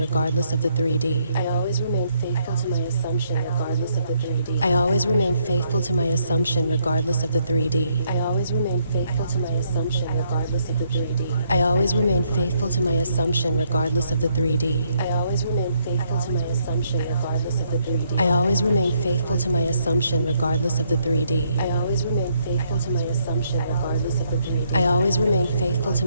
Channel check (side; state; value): both; inverted; correlation -0.73